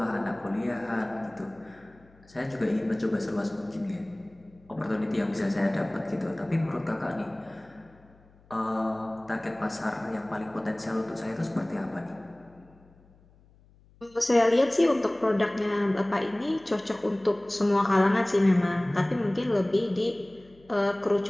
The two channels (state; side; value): noise; left; hum, 28 dB below the sound